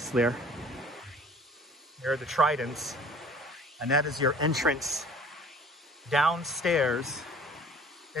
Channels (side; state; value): both; normal; correlation 0.49